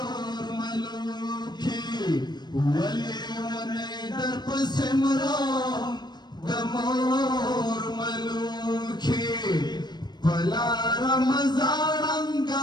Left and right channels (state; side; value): late; right; 0.21 ms